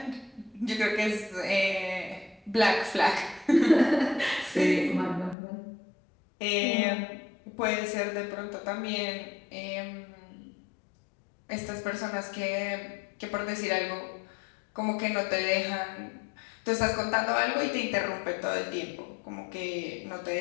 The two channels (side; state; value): right; drops out; at 5.4 s